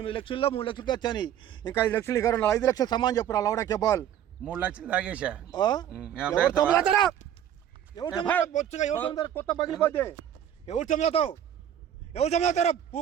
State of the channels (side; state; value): left; quieter; 10.2 dB